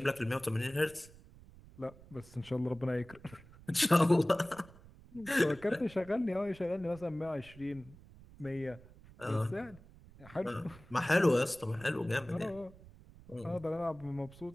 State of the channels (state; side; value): noise; right; rumble, 21 dB below the sound